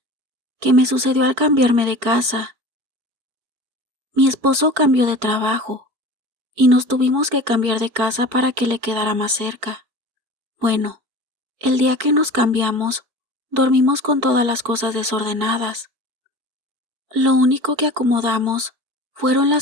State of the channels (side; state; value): left; late; 4.6 ms